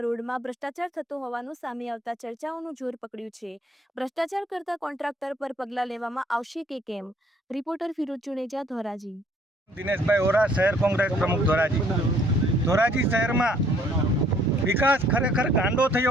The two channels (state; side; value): normal; both; correlation 0.61